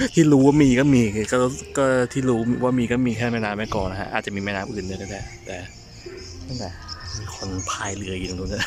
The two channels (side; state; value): both; identical; correlation 1.00